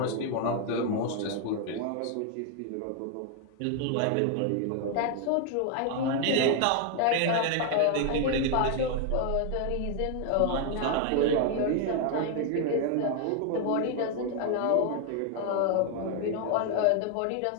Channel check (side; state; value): both; different; correlation 0.00